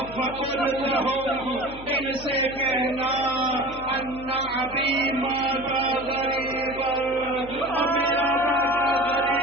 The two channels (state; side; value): noise; left; hum, 17 dB below the sound